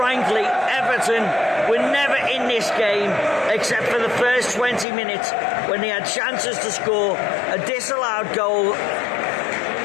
Everton were never in this game except for the first 20 minutes when they had chances to score a disallowed goal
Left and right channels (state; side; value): drops out; right; at 4.9 s